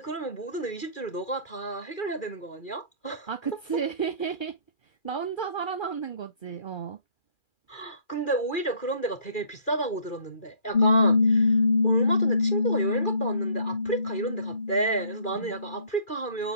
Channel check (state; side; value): late; right; 2.4 ms